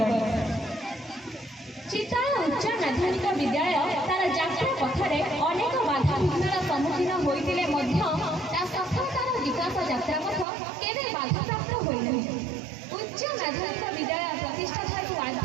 चित्ताला उच्च माध्यमिक विद्यालय तार जात्रा पथरे अनेक बाधा विघ्नर सम्मुखीन होते सफलतार विकास यात्रा पथ केवे बाधाप्राप्त होइनाही। उच्च माध्यमिक विद्यालय प्रतिष्ठा ठारू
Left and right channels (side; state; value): left; drops out; at 10.5 s